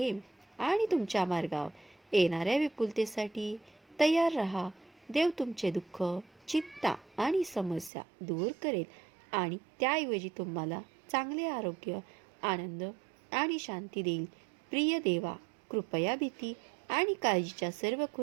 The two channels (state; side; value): drops out; left; at 7.9 s